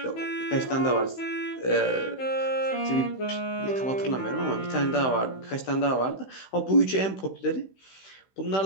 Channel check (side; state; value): right; late; 16 ms